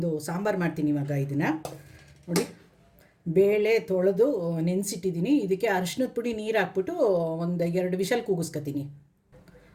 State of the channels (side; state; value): both; identical; correlation 1.00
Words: ಸಾಂಬಾರು ಮಾಡ್ತೀನಿ ಇವಾಗ. ಇದನ್ನು ನೋಡಿ, ಬೇಳೆ ತೊಳೆದು ನೆನೆಸಿಟ್ಟಿದ್ದೀನಿ. ಇದಕ್ಕೆ ಅರಿಶಿನದ ಪುಡಿ ನೀರು ಹಾಕ್ಬಿಟ್ಟು ಒಂದು 2 ವಿಷಲ್ ಕೂಗಿಸ್ಕೊತೀನಿ.